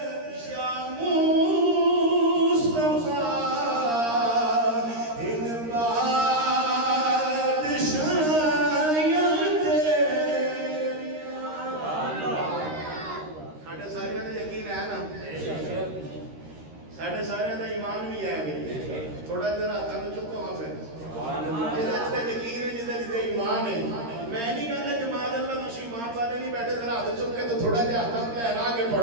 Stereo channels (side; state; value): left; late; 13 ms